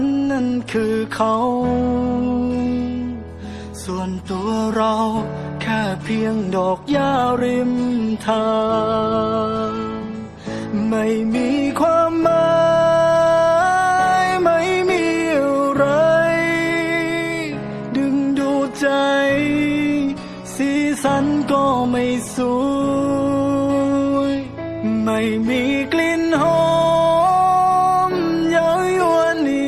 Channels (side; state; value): both; identical; correlation 1.00